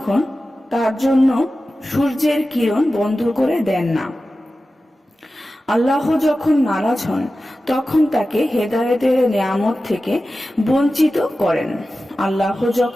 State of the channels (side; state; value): both; normal; correlation 0.94